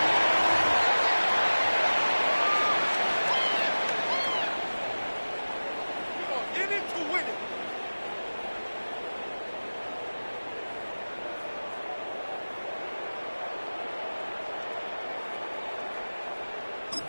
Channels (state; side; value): inverted; both; correlation -1.00